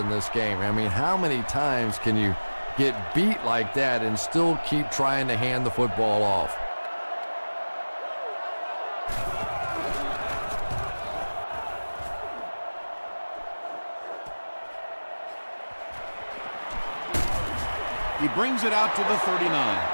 this game. I mean, how many times can you get beat like that and still keep trying to hand the football off? He brings it out to the 39.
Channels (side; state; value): both; inverted; correlation -1.00